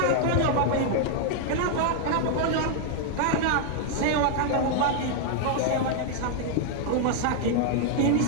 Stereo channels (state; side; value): different; both; correlation 0.00